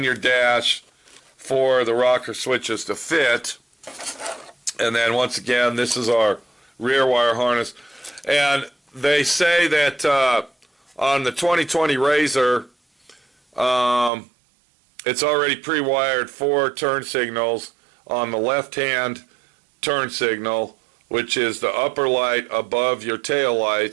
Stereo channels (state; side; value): drops out; left; at 14.1 s